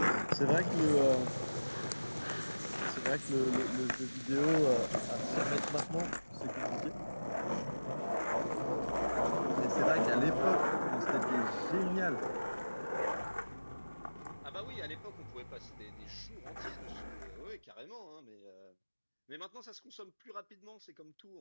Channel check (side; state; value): both; inverted; correlation -1.00